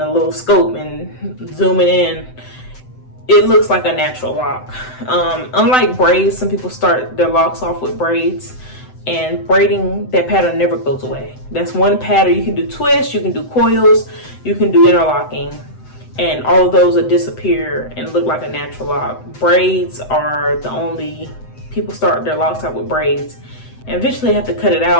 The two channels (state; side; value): late; right; 7.9 ms